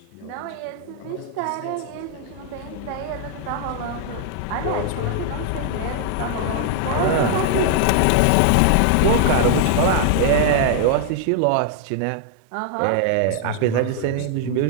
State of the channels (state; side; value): different; both; correlation 0.00